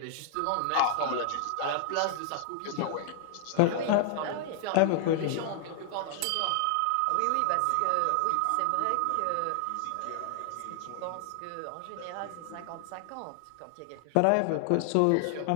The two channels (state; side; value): different; both; correlation 0.00